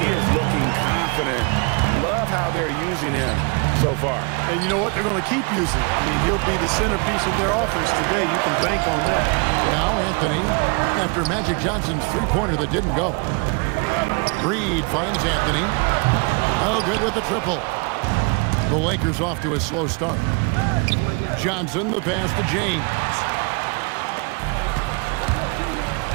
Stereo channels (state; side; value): quieter; left; 32.7 dB